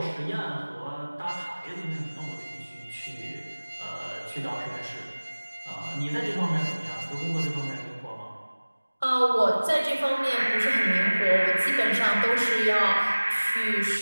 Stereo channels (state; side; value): inverted; both; correlation -1.00